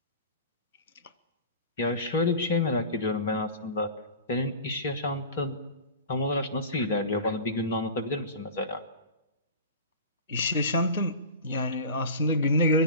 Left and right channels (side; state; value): both; inverted; correlation -0.34